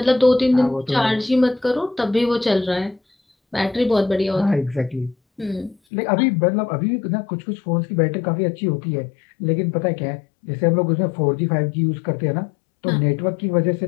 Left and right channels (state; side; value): drops out; right; at 5.8 s